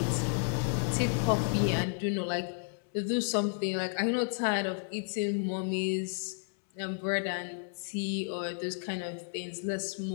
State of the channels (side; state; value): right; silent; 56 dB below the other